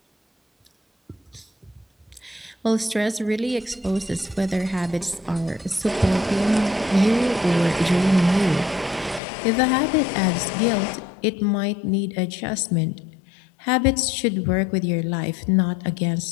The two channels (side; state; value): right; drops out; at 9.2 s